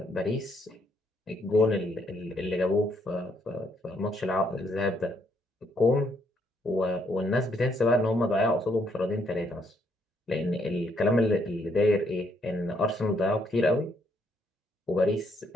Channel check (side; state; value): both; normal; correlation 0.72